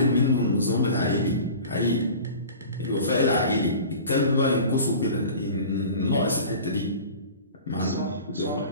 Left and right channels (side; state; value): both; inverted; correlation -0.40